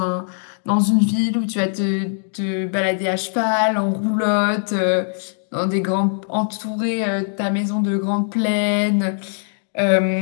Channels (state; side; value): silent; right; digital silence